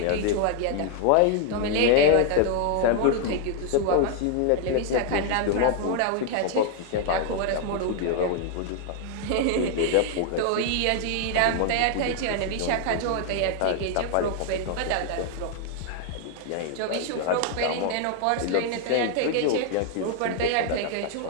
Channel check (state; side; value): different; both; correlation 0.00